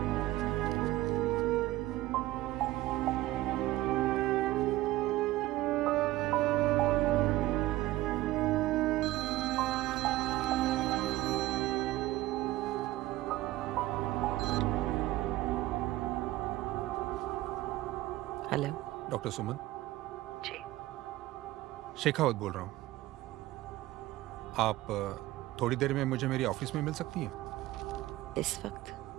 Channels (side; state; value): left; quieter; 16.9 dB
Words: हेलो डॉक्टर सुमन। जी। शेखावत बोल रहा हूँ। आप थोड़ी देर में मुझे मेरी ऑफिस में मिल सकती हैं? इस वक्त?